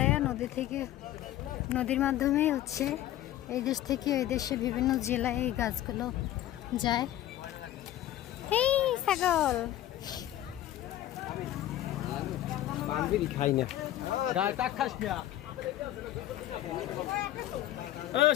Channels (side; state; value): right; quieter; 13.3 dB